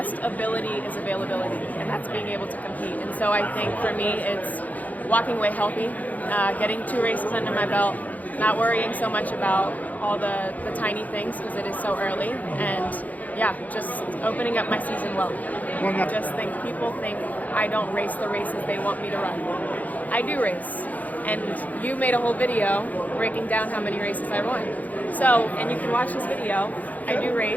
ability is availability, and that's being able to compete. And so I think for me, it's walking away healthy, getting 2 races under my belt, not worrying so much about all the tiny things because it is so early, and just opening up my season well. I just think people think I don't race the races they want me to run. I do race. And you made a whole video breaking down how many races I won. So, and you can watch this video, I do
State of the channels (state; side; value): late; right; 0.078 ms